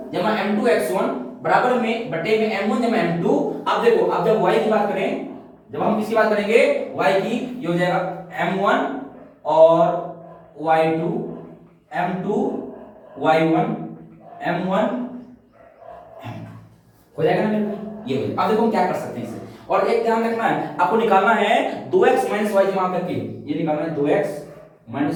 जमा m2 x1 बराबर में बटे में m1 जमा m2। अब देखो अब जब y की बात करें, जब हम किसकी बात करेंगे, y की, ये हो जाएगा m1 और y2 m2 y1 m1 हो जाएगा ना मेरे भाई, ये हो जाएगा। अब देखो हम क्या कर सकते हैं इसे, और एक ध्यान रखना है, आपको निकालना है 2x - y जमा करके, ये निकालना है 2x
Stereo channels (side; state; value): both; identical; correlation 1.00